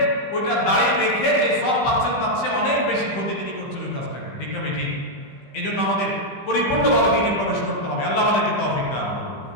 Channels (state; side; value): late; right; 15 ms